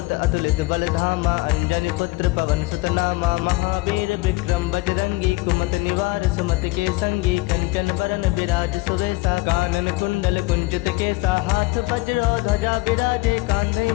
अतुलित बल धामा अंजनी पुत्र पवन सुत नामा महावीर विक्रम बजरंगी कुमति निवार सुमति के संगी कंचन बरन विराज सुबेसा कानन कुंडल कुंचित केसा हाथ वज्र ध्वजा विराजे कांधे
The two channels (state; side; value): quieter; right; 22.0 dB